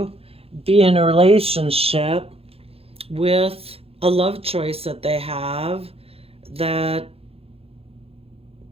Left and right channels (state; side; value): late; left; 0.28 ms